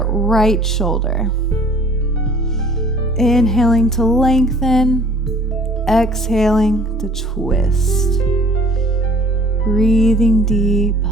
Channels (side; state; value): both; normal; correlation 0.53